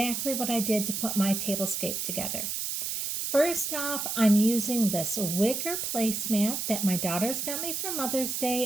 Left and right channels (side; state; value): right; noise; hiss, 2 dB below the sound